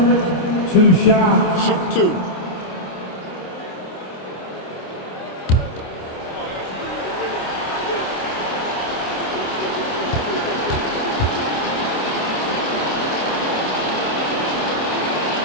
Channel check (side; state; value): right; late; 27 ms